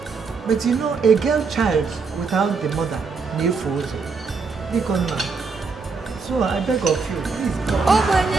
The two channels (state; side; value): quieter; left; 4.8 dB